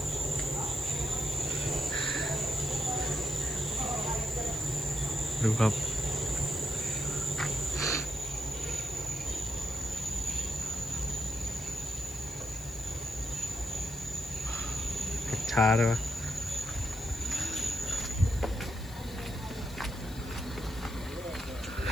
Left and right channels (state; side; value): noise; left; hiss, 19 dB below the sound